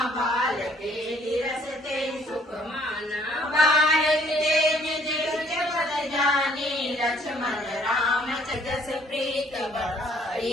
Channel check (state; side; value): normal; both; correlation 0.62